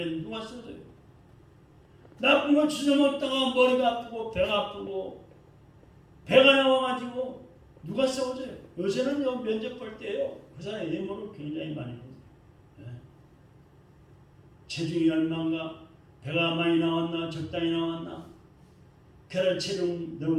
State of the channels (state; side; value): identical; both; correlation 1.00